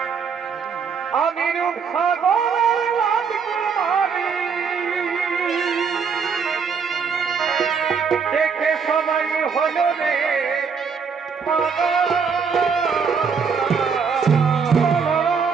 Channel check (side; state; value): left; quieter; 6.0 dB